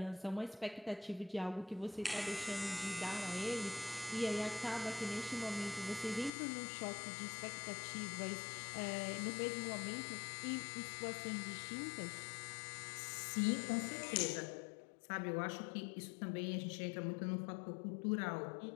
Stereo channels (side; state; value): right; drops out; at 6.3 s